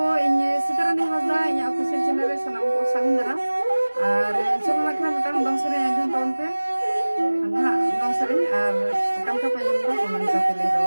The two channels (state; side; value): inverted; both; correlation -1.00